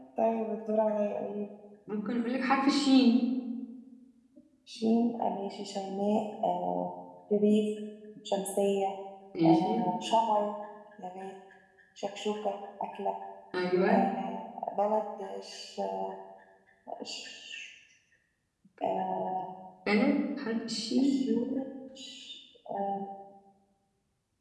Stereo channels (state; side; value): identical; both; correlation 1.00